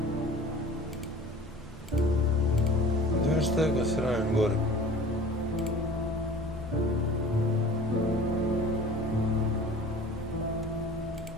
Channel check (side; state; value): both; normal; correlation 0.43